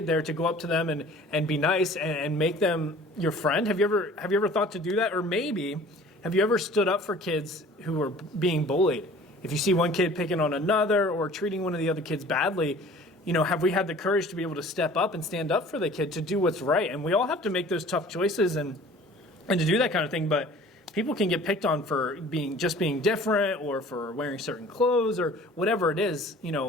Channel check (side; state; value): both; normal; correlation 0.48